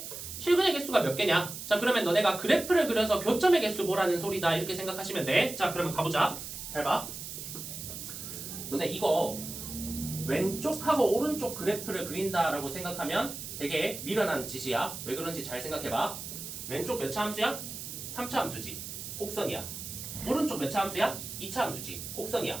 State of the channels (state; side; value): noise; right; hiss, 9 dB below the sound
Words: 실근의 개수가 몇 개냐? 자, 그러면 너네가 그래프를 그려서 교점의 개수 보라는 소리다. 이렇게 생각하시면 돼. 자, 그러면 가보자. 잘 봐. 너네 이거 왼쪽하고 오른쪽 그래프를 그린다라고 생각하면 되게 미련한 짓이야. 왜 그런지 잘 생각해봐. 왼쪽 몇 차 함수야? 3차 함수지. 곡선이야. 오른쪽 몇 차 함수야? 2차 함수지.